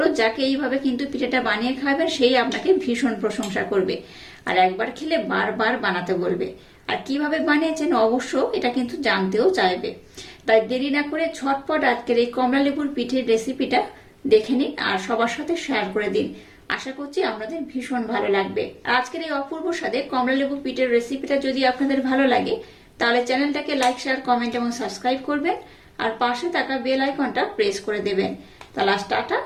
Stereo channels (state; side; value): identical; both; correlation 1.00